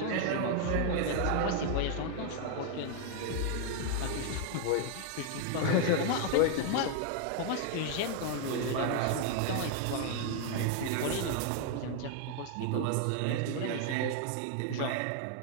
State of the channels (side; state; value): both; different; correlation 0.00